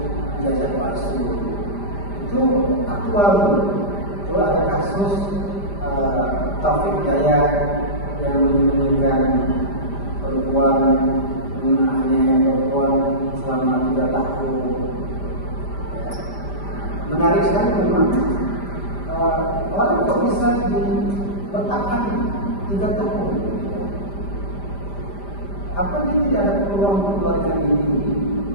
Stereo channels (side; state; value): right; late; 5.0 ms